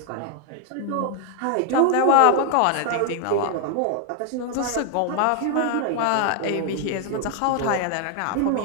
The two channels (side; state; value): both; different; correlation 0.00